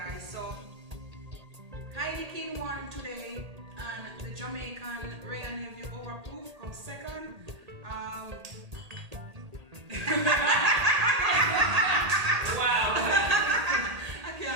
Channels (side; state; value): left; late; 1.8 ms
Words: So Heineken won today, and the Jamaican Ray and Nephew overproof comes second. Wow. I